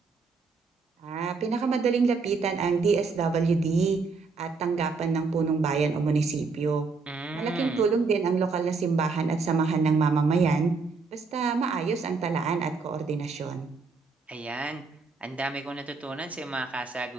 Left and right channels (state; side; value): quieter; left; 4.5 dB